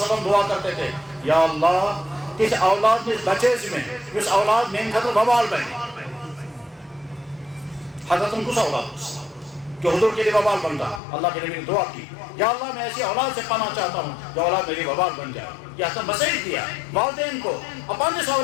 وسلم دعا کرتے تھے یا اللہ اس اولاد میں بچے میں اس اولاد میں خطر بوال بنے، حضرت ان کو اولاد کہ حضور کے لیے وبال بنتا، اللہ کے نبی نے دعا کی یا اللہ میں ایسی اولاد سے پانا چاہتا ہوں جو اولاد میری وبال بن جائے۔ یہ حسن مسیح دیا والدین کو اپنے اس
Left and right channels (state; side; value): drops out; right; at 11.0 s